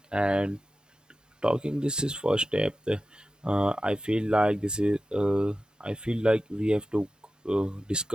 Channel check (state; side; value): normal; both; correlation 0.93